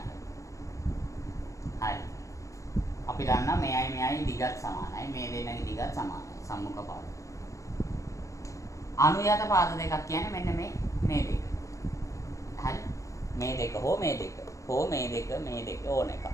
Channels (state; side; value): late; right; 0.15 ms